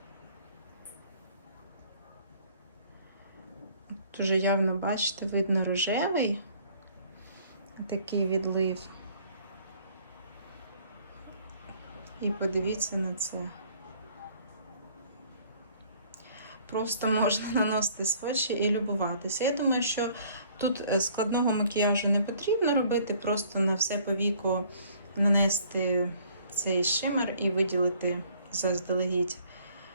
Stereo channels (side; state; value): both; inverted; correlation -0.58